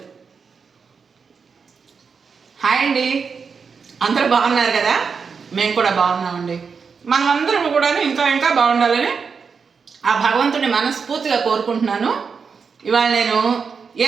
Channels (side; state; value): left; quieter; 5.6 dB